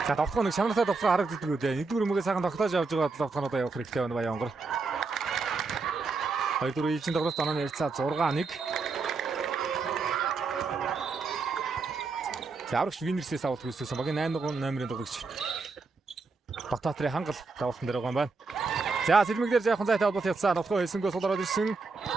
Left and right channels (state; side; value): quieter; left; 4.2 dB